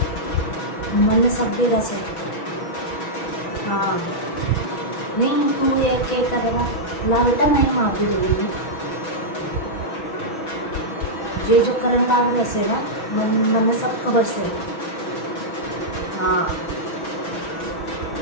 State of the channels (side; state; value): right; late; 6.2 ms